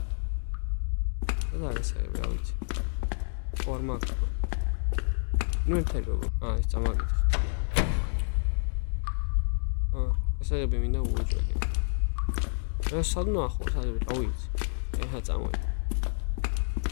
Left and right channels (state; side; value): silent; right; digital silence